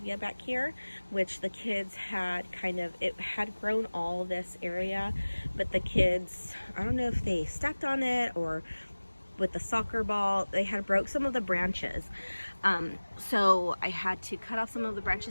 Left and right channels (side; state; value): both; inverted; correlation -1.00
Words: back here, which the kids had it had grown all this area, but the kids, I don't know if they stepped on it or with the soccer ball, they had broke some of the branches. So I had to cut off some of the